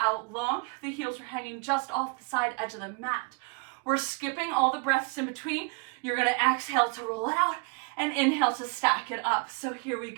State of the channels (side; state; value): left; quieter; 33.1 dB